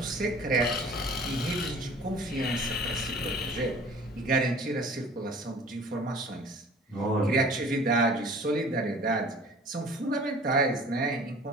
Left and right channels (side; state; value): both; normal; correlation 0.47